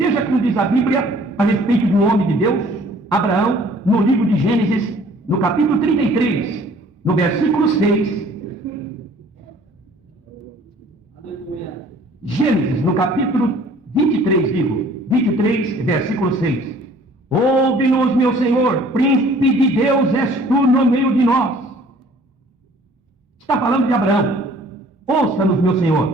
como diz a Bíblia a respeito do homem de Deus, Abraão, no livro de Gênesis, no capítulo 33, no versículo 6. Gênesis, no capítulo 23, digo, 23, versículo 6. Ouve-nos, meu Senhor, príncipe de Deus és tu no meio de nós. Está falando de Abraão. Ouça-nos, meu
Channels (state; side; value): normal; both; correlation 0.54